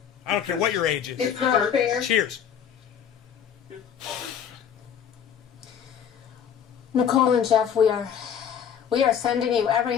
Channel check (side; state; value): right; quieter; 8.4 dB